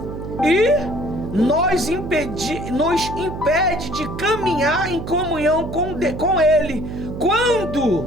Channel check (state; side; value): noise; right; hum, 8 dB below the sound